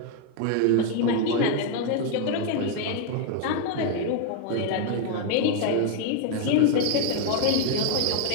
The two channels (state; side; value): different; both; correlation 0.00